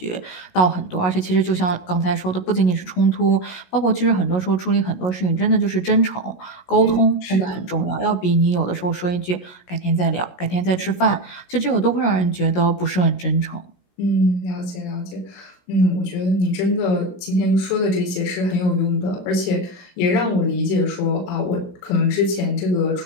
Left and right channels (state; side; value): late; right; 16 ms